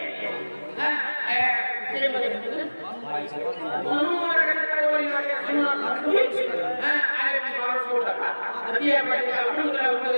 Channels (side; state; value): both; inverted; correlation -1.00